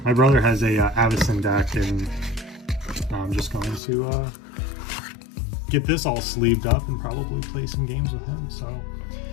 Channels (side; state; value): right; drops out; at 3.8 s